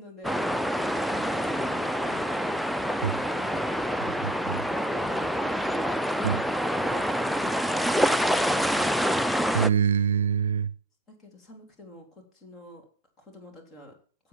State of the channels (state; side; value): normal; both; correlation 0.53